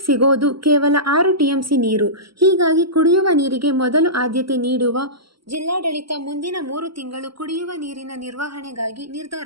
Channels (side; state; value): left; late; 0.75 ms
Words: ಸಿಗೋದು ಕೇವಲ 6 ಟಿಎಂಸಿ ನೀರು. ಹೀಗಾಗಿ ಕುಡಿಯುವ ನೀರಿಗೆ ಮೊದಲು ಆದ್ಯತೆ ನೀಡುವ ಜಿಲ್ಲಾಡಳಿತ ಮುಂದಿನ 3 ತಿಂಗಳು ಕುಡಿಯುವ ನೀರಿನ ನಿರ್ವಹಣೆಗಾಗಿ